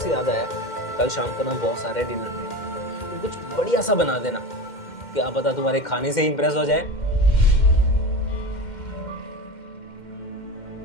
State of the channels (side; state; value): right; late; 2.1 ms